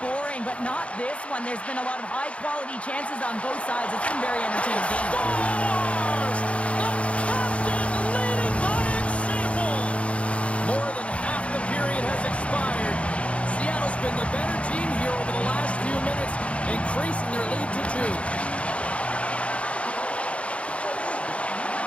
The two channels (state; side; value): late; right; 0.062 ms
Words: boring, but not this one. There's been a lot of high-quality chances on both sides. It's been very entertaining game. Scores! The captain leading by example. More than half the period has expired. Seattle's been the better team here over the last few minutes, increasing their lead to 2.